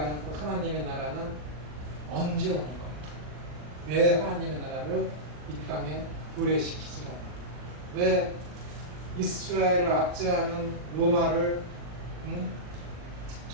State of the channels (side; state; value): left; late; 40 ms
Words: 그 하나님의 나라는 언제 오는 거야? 왜 하나님의 나라를 이 땅에 도래시키지 않아? 왜 이스라엘을 압제하는 로마를